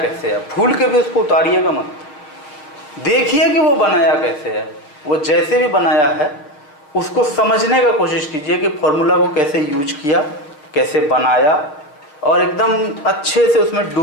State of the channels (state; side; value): late; right; 6.7 ms